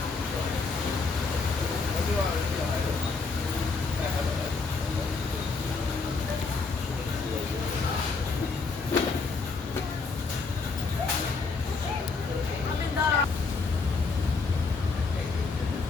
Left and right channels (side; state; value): right; quieter; 4.3 dB